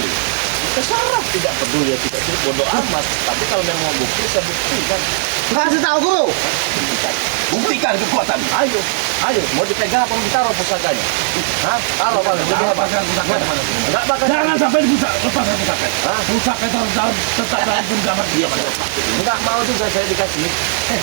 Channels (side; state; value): left; silent; digital silence